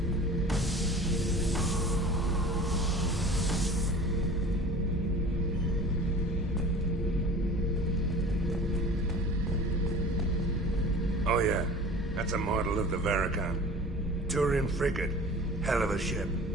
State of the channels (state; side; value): normal; both; correlation 0.41